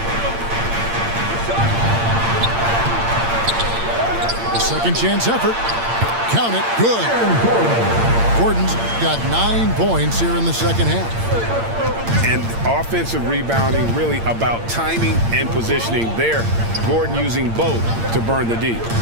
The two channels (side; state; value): left; late; 8.7 ms